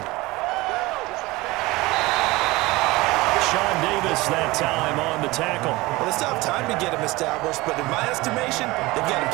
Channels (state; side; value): quieter; left; 21.0 dB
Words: Sean Davis that time on the tackle. Well, they still have time to get him established, but in my estimation, they've got to